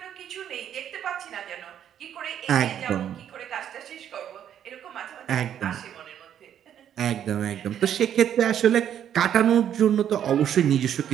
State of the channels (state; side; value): quieter; left; 9.8 dB